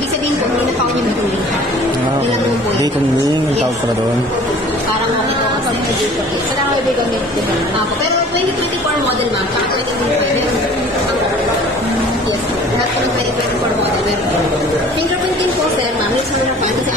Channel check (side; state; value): both; normal; correlation 0.48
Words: sabihin po, hindi na pa ako niya mag-uling. Ilang mo po yun. Date on link, ang tawag pala doon. Parang okay po kasi dito. Sa lang ibig kami. Pero 2024 model ma'am, saka 2025. Yes, lahat po ng 2024 model. Fingerprint din po sir ma'am, yung sa fan kasi